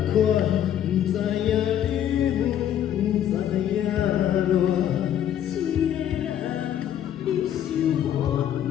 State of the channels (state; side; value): quieter; right; 10.4 dB